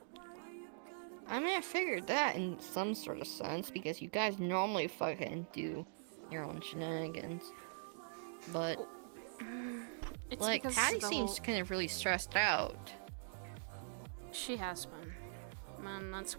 I mean, I figured that in some sort of sense because you guys normally fucking do your own shenanigans, but It's like because Patty the seems whole... kind of really stressed out. She has been, and that's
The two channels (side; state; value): left; silent; digital silence